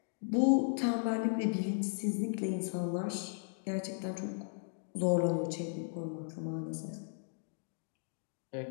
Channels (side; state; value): right; silent; digital silence